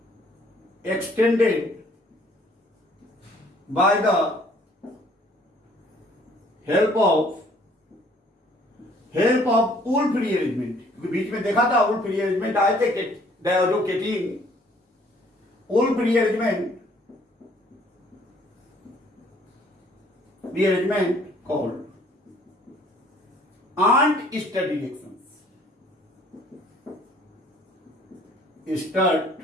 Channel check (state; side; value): normal; both; correlation 0.59